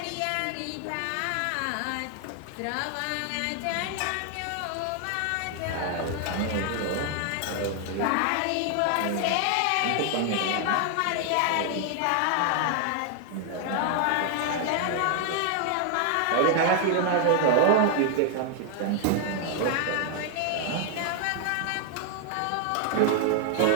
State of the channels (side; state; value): both; different; correlation 0.00